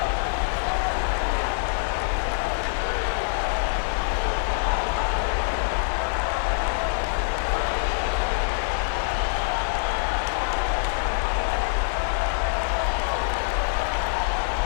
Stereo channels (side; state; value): right; silent; digital silence